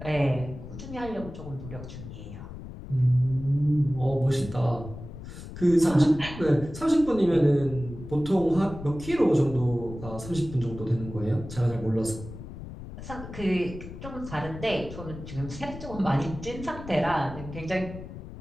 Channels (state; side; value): noise; left; rumble, 12 dB below the sound